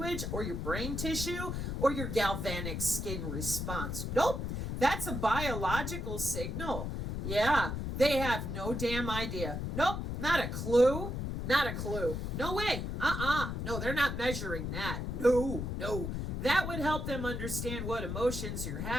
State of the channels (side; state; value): left; noise; rumble, 3 dB below the sound